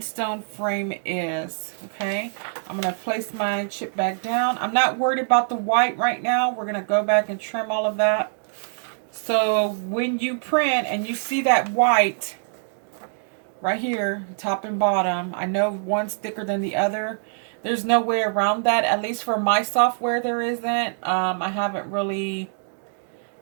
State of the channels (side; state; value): left; silent; digital silence